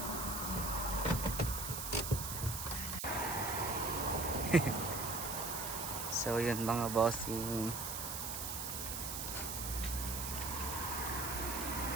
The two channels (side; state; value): right; noise; hiss, 4 dB below the sound